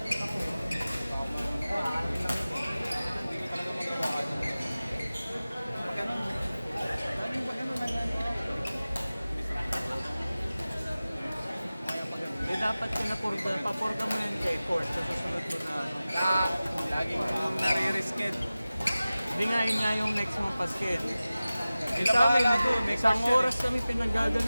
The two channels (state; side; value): inverted; both; correlation -0.97